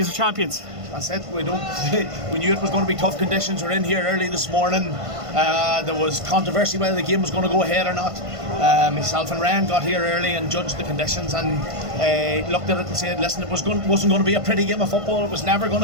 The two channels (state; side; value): late; left; 1.5 ms